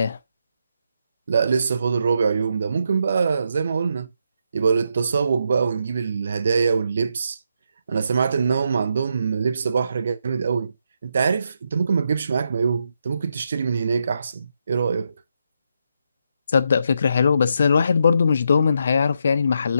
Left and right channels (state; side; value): inverted; both; correlation -0.80